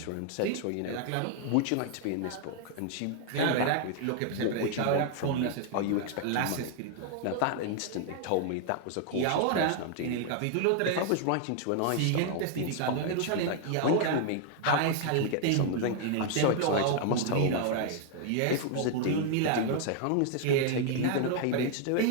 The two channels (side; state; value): both; different; correlation 0.00